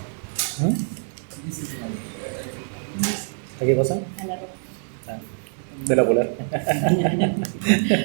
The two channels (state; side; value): silent; left; digital silence